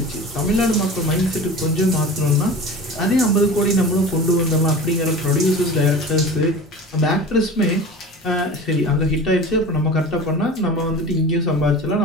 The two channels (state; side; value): normal; both; correlation 0.35